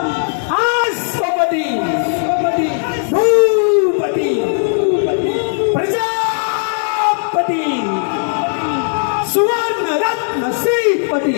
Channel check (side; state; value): right; silent; digital silence